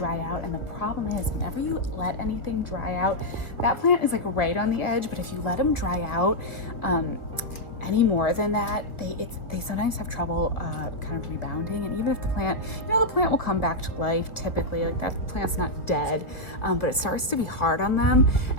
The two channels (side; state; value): right; late; 1.9 ms